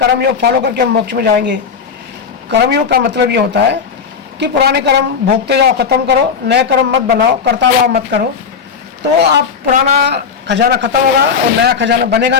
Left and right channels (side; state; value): right; quieter; 6.2 dB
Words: योग फॉलो करके हम मोक्ष में जाएंगे। कर्म योग का मतलब ये होता है कि पुराने कर्म भोगते जाओ, खत्म करो, नए कर्म मत बनाओ, करता भाव मत करो, तो आप पुराना खजाना खत्म होगा और नया खजाना बनेगा